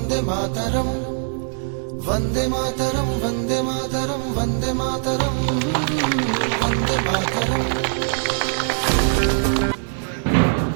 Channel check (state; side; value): silent; left; digital silence